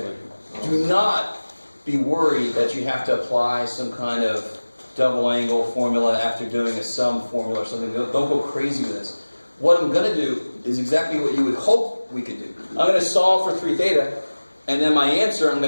Do not be worried that you have to apply some kind of double angle formula after doing a sum formula or something. Don't go crazy with this. What I'm going to do is exactly what you would hope we could do. I'm going to solve for 3 theta, and then my answer I'm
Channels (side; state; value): both; inverted; correlation -1.00